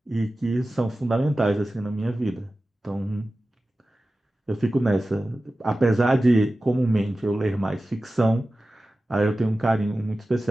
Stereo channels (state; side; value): normal; both; correlation 0.95